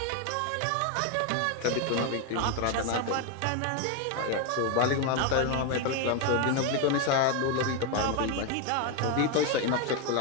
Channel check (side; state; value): both; different; correlation 0.01